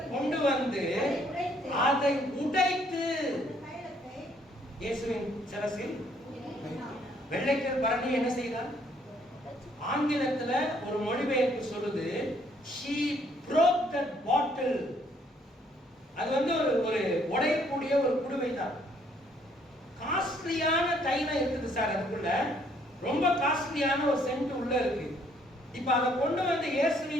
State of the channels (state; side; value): normal; both; correlation 0.66